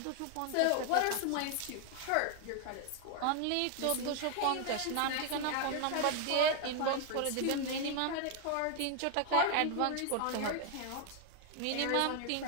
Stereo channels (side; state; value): both; different; correlation 0.00